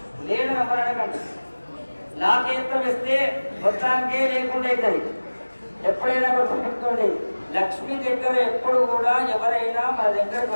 లేదు నమ్మడానికంటే. నాకేంతం ఇస్తే మొత్తానికే లేకుండా అవుతుంది. ఎప్పుడైనా గుర్తుపెట్టుకోండి, లక్ష్మి దగ్గర ఎప్పుడు కూడా ఎవరైనా మన దగ్గరకు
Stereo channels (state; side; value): inverted; both; correlation -1.00